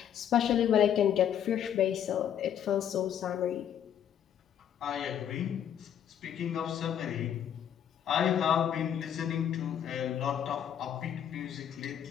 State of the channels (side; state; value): right; quieter; 9.5 dB